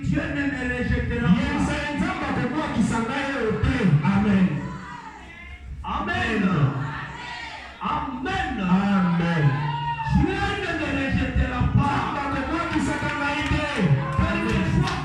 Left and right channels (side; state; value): both; identical; correlation 1.00